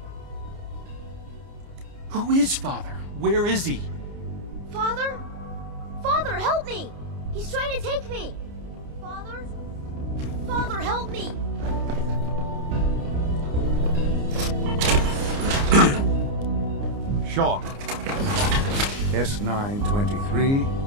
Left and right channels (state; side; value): late; left; 29 ms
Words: Who is Father? Where is he? Father? Father, help me! He's trying to take me! Father? Father, help me! Sean. S923,